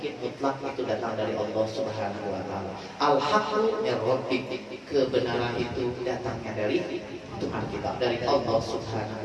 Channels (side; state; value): both; identical; correlation 1.00